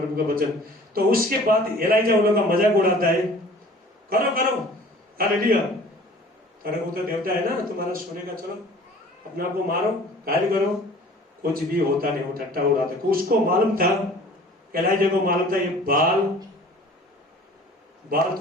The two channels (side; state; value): both; normal; correlation 0.48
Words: का वचन। तो उसके बाद एलाइजा उन लोगों का मजाक उड़ाता है, करो करो, हालेलुया, करो, वो तो देवता है ना तुम्हारा सोने का, चलो अपने आप को मारो, घायल करो, कुछ भी होता नहीं, वो ठट्टा उड़ाता। उसको मालूम था, एलाइजा को मालूम था, ये बाल